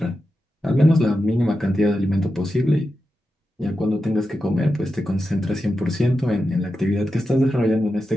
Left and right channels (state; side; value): normal; both; correlation 0.90